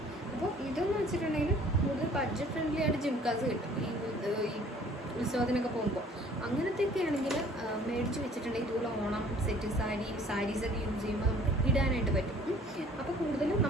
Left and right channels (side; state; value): both; normal; correlation 0.54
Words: അപ്പോൾ ഇതെന്ന് വെച്ചിട്ടുണ്ടെങ്കിൽ കൂടുതൽ ബഡ്ജറ്റ് ഫ്രണ്ട്ലി ആയിട്ട് ജിംകാസ് കിട്ടും. ഈ ഉത്സവത്തിനൊക്കെ പോകുമ്പോൾ അങ്ങനത്തെയൊക്കെ ആണെങ്കിൽ മേടിച്ച് വെച്ചിട്ടുണ്ടെങ്കിൽ ഇതുപോലെ ഓണം സെറ്റ് സാരീസൊക്കെ യൂസ് ചെയ്യുമ്പോൾ നമുക്ക് ഇടാനായിട്ട് പറ്റും. അപ്പോൾ കൂടുതലും